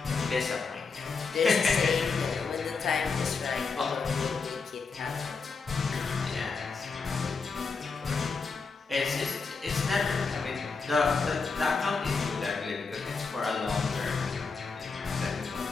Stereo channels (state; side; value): quieter; right; 4.7 dB